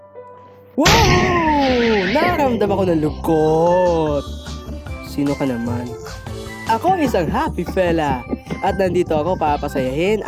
Wow! Nakaramdam ako ng lungkot. Sino ka naman? Ako isang happy fella. At nandito ako para pasayahin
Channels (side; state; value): both; identical; correlation 1.00